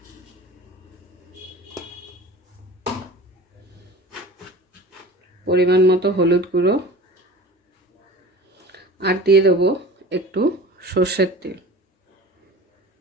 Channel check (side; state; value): both; normal; correlation 0.38